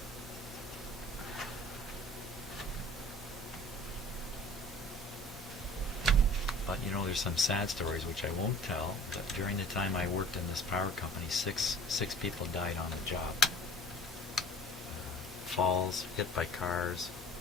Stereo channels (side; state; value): both; normal; correlation 0.47